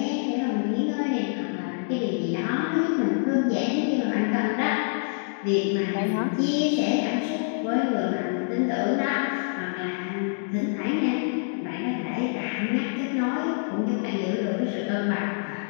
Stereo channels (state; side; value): silent; right; digital silence